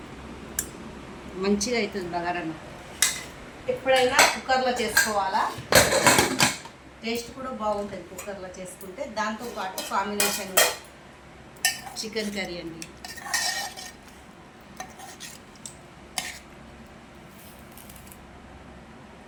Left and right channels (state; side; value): identical; both; correlation 1.00